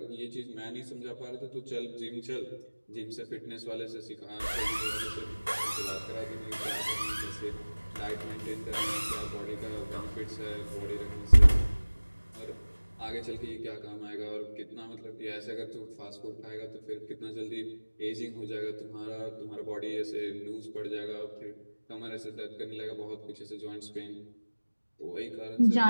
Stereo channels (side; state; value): both; inverted; correlation -1.00